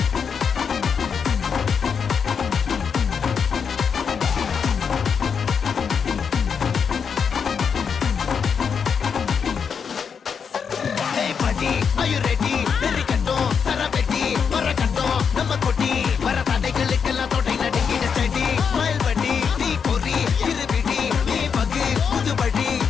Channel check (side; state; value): right; quieter; 6.5 dB